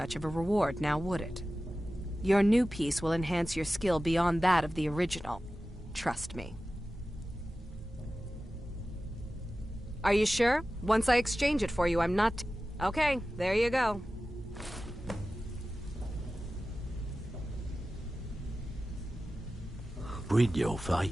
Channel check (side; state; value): both; normal; correlation 0.95